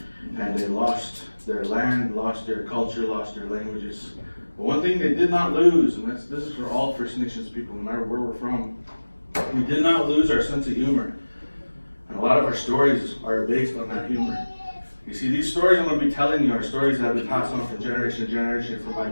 And they lost their land, lost their culture, lost their languages. But one thing they did not lose, and this is for all First Nations people, no matter where we're from, we did not lose our sense of humor. And a lot of our stories are based on that humor. You see, these stories I'm going to be telling you are stories that have been passed on from generation to generation from my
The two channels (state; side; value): inverted; both; correlation -1.00